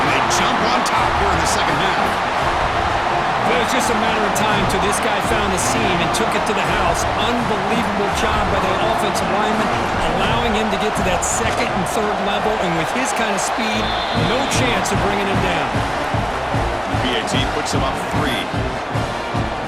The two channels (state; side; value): identical; both; correlation 1.00